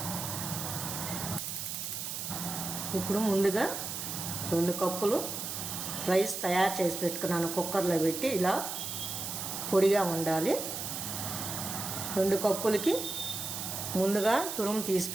ఇప్పుడు ముందుగా 2 కప్పులు రైస్ తయారు చేసి పెట్టుకున్నాను. కుక్కర్లో పెట్టి ఇలా పొడిగా ఉండాలి. 2 కప్పులకి ముందుగా తురుము తీసి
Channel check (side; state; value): right; noise; hiss, 5 dB below the sound